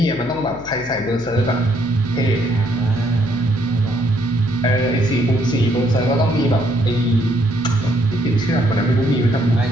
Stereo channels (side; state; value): left; noise; hum, 18 dB below the sound